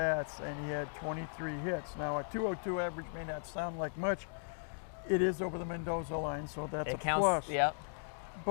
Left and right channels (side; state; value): right; silent; digital silence